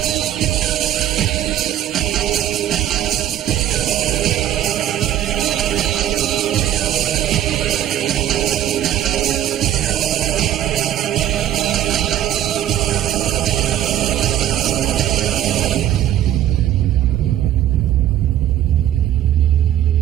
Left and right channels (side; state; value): left; quieter; 11.9 dB